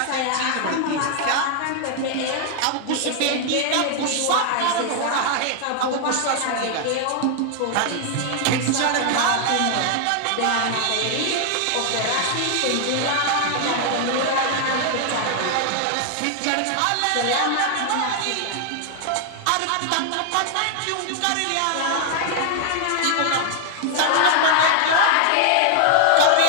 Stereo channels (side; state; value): both; different; correlation 0.00